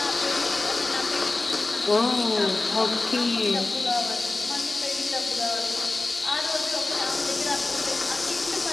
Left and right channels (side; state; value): right; quieter; 3.1 dB